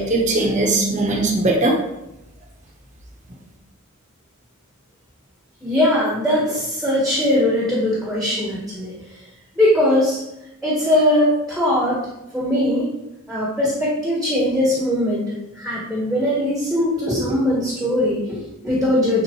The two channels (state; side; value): normal; both; correlation 0.35